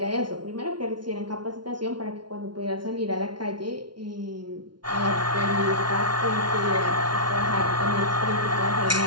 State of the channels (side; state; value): left; late; 0.71 ms